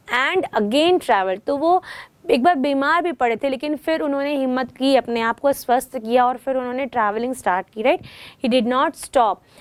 and again travel. तो वो एक बार बीमार भी पड़े थे लेकिन फिर उन्होंने हिम्मत की, अपने आप को स्वस्थ किया और फिर उन्होंने ट्रैवलिंग स्टार्ट की, right. He did not stop,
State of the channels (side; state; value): both; identical; correlation 1.00